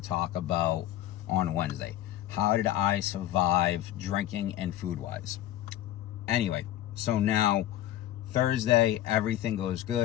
talk about on Wednesday. How did I survive drinking and food wise? Anyway, so now Thursday, everything goes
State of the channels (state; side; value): quieter; right; 13.4 dB